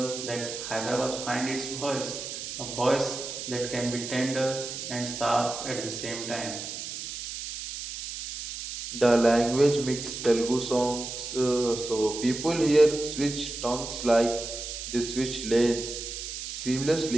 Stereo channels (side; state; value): right; noise; hiss, 7 dB below the sound